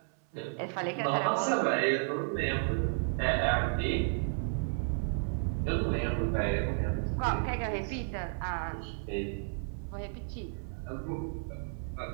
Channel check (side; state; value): left; silent; 56 dB below the other